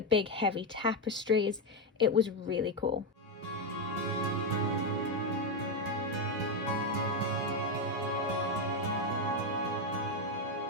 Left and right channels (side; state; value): both; normal; correlation 0.06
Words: big heavy tapestries. It was really cool.